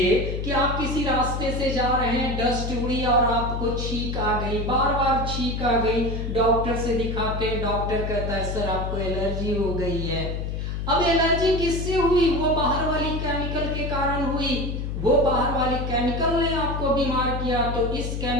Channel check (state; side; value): noise; left; hum, 3 dB below the sound